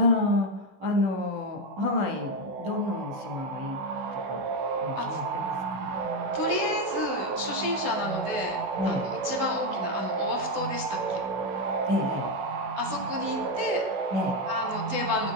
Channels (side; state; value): left; late; 16 ms